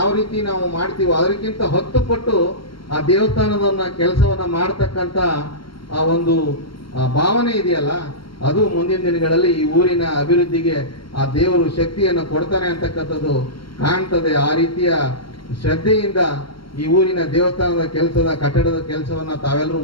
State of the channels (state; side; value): late; right; 0.73 ms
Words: ರೀತಿ ನಾವು ಮಾಡ್ತೀವೋ ಅದಕ್ಕಿಂತ 10 ಪಟ್ಟು ಆ ದೇವಸ್ಥಾನದ ಕೆಲಸವನ್ನ ಮಾಡ್ತಕ್ಕಂಥ ಆ ಒಂದು ಭಾವನೆ ಇದೆಯಲ್ಲ, ಅದು ಮುಂದಿನ ದಿನಗಳಲ್ಲಿ ಈ ಊರಿನ ಅಭಿವೃದ್ಧಿಗೆ ಆ ದೇವರು ಶಕ್ತಿಯನ್ನು ಕೊಡ್ತಾನೆ ಅಂತಕ್ಕಂಥದ್ದು ಕಾಣ್ತದೆ. ಆ ರೀತಿಯ ಶ್ರದ್ಧೆಯಿಂದ ಈ ಊರಿನ ದೇವಸ್ಥಾನದ ಕೆಲಸದ ಕಟ್ಟಡದ ಕೆಲಸವನ್ನ ತಾವೆಲ್ಲರೂ